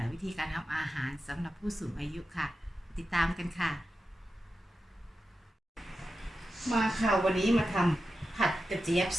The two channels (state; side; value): normal; both; correlation 0.91